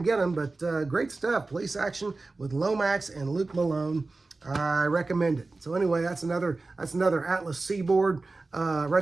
get them, but great stuff. Police Action with Lomax and Luke Malone. I recommend it. So anyway, that's another Atlas Seaboard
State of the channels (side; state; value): left; quieter; 3.5 dB